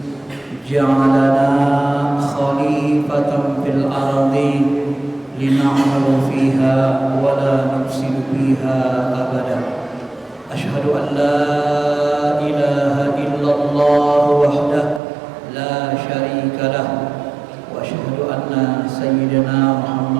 ja'alana khalifatan fil ardi lina'malu fiha wa la nufsidu fiha abada. Asyhadu an la ilaha illallah wahdahu la syarika lah wa asyhadu anna sayyidina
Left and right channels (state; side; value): drops out; left; at 15.0 s